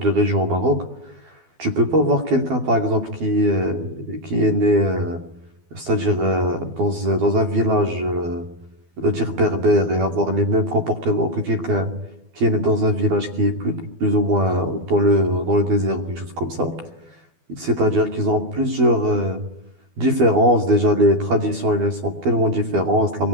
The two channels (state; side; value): late; left; 12 ms